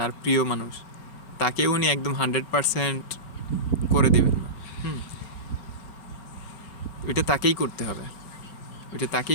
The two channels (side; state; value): right; late; 4.4 ms